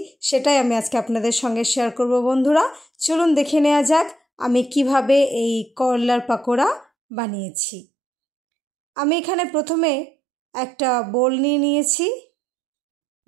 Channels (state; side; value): drops out; left; at 6.9 s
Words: সেটাই আমি আজকে আপনাদের সঙ্গে শেয়ার করব বন্ধুরা। চলুন দেখে নেওয়া যাক আমি কিভাবে এই করলার পাকোড়া বানিয়েছি। আমি এখানে প্রথমে একটা বোল নিয়ে নিয়েছি।